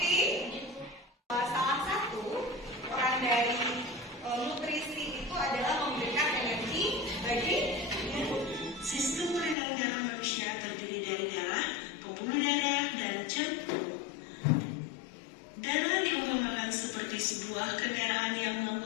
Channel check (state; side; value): drops out; right; at 9.6 s